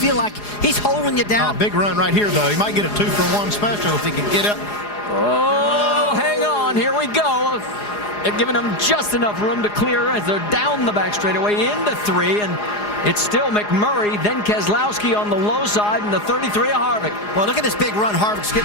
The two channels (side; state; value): right; late; 4.8 ms